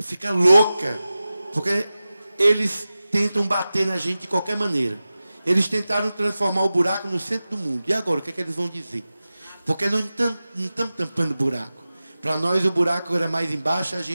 louca, porque eles tentam bater na gente de qualquer maneira. Eles tentaram transformar o buraco no centro do mundo. E agora, o que é que eles vão dizer? Porque nós não estamos tampando buraco. Para nós, o buraco era mais embaixo, a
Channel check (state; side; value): inverted; both; correlation -0.95